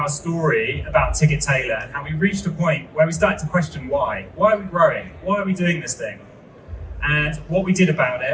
story about Ticket Tailor and how we reached a point where we started to question why. Why are we growing? Why are we doing this thing? And what we did about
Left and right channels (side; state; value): both; identical; correlation 1.00